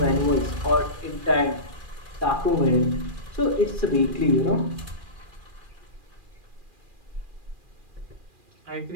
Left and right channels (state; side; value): late; left; 2.4 ms